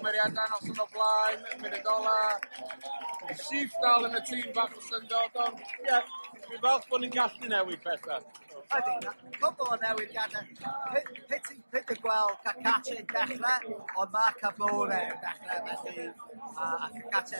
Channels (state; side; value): inverted; both; correlation -1.00